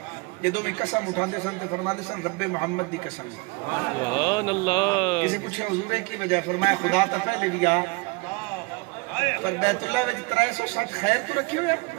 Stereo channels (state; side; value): quieter; left; 27.8 dB